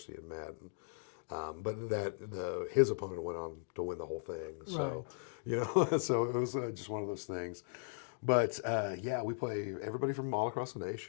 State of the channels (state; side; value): silent; right; digital silence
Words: in Madden. But his opponent went on to win the whole thing. So, so it was just one of those things. But yeah, we play everybody from all across the